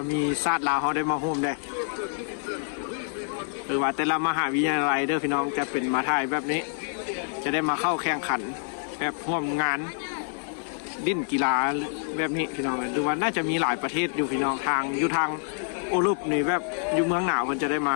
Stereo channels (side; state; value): right; silent; digital silence